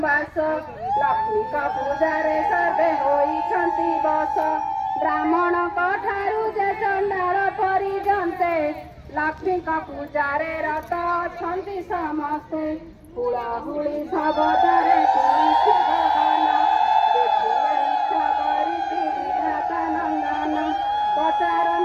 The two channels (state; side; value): identical; both; correlation 1.00